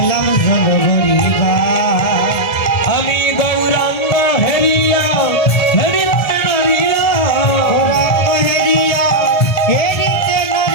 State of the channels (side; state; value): right; late; 1.3 ms